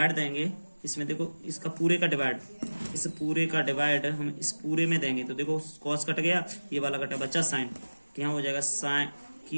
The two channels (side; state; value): both; inverted; correlation -1.00